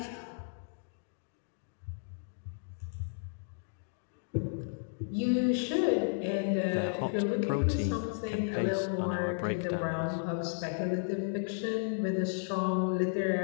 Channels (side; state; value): right; silent; digital silence